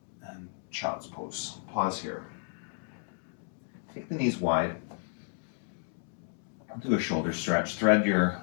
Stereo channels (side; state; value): right; silent; 56 dB below the other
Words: And child's pose. Pause here. Take the knees wide. Do a shoulder stretch. Thread your